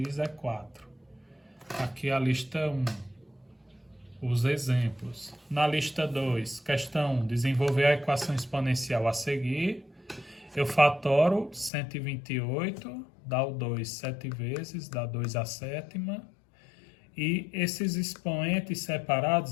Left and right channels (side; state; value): right; drops out; at 11.7 s